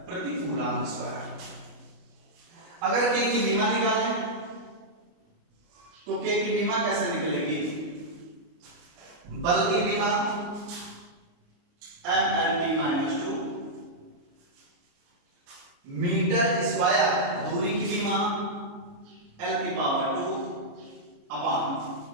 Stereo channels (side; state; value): left; late; 29 ms